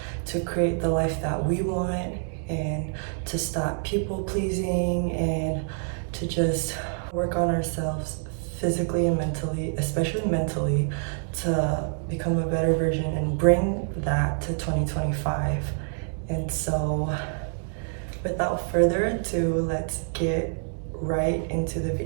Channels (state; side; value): silent; left; 59 dB below the other